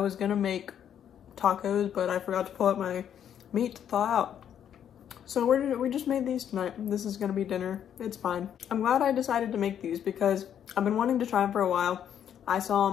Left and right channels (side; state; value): right; quieter; 9.4 dB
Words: gonna make tacos, but I forgot to pull out my meat to thaw out. So we just made these tonight. This is gonna be dinner. It's fine. I'm glad I decided to make these because I've been wanting to try them for a while. I saw